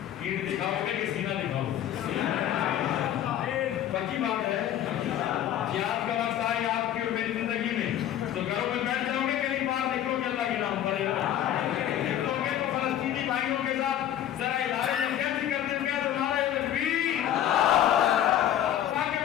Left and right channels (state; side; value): quieter; right; 11.2 dB